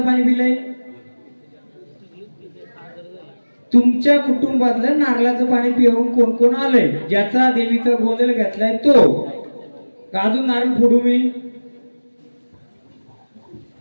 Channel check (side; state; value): both; inverted; correlation -1.00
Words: पाणी पिलंय? तुमच्या कुटुंबातलं नारळाचं पाणी पिऊन कोण कोण आलंय? ज्याचा देवीचा गोंधळ घेतलाय तो. अजून नारळ फोडू मी?